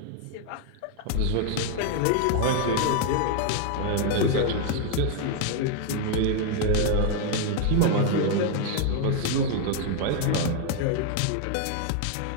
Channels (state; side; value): different; both; correlation 0.01